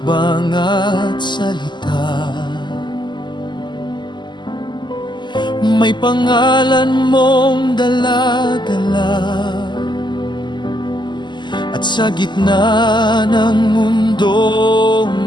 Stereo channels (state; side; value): late; right; 0.22 ms